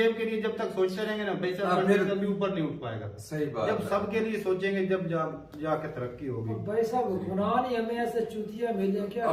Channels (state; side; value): identical; both; correlation 1.00